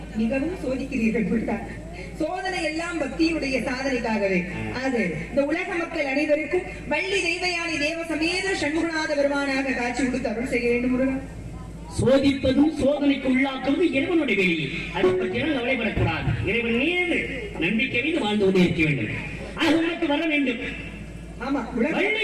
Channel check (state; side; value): identical; both; correlation 1.00